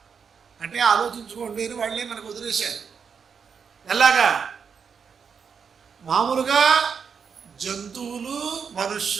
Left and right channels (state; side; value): quieter; left; 6.4 dB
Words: అంటే ఆలోచించుకోండి అని వాళ్ళే మనకు వదిలేశారు. ఎలాగా? మామూలుగా జంతువులు,